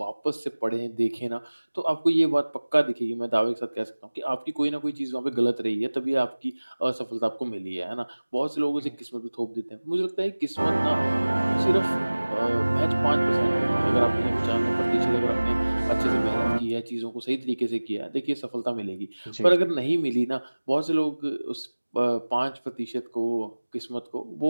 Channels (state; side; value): inverted; both; correlation -1.00